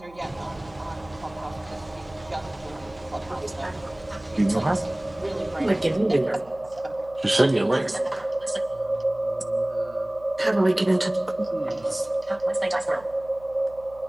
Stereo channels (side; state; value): right; noise; hum, 23 dB below the sound